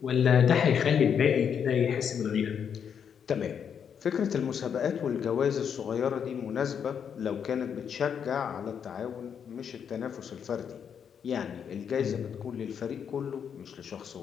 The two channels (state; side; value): quieter; right; 7.7 dB